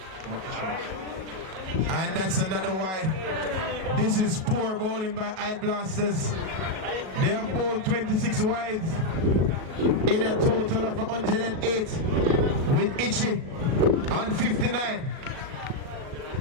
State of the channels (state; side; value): late; left; 37 ms